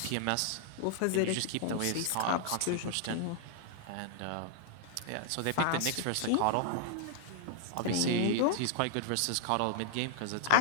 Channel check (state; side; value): different; both; correlation -0.01